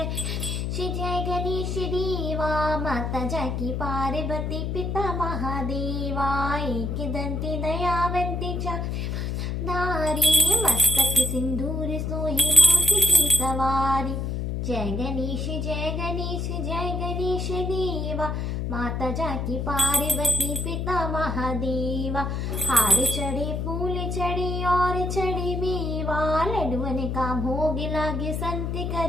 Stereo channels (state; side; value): noise; left; hum, 2 dB below the sound